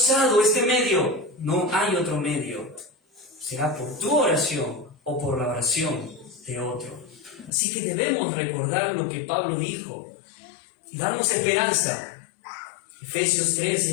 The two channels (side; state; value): right; drops out; at 7.5 s